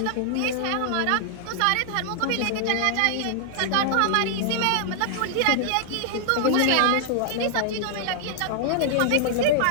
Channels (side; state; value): both; different; correlation -0.01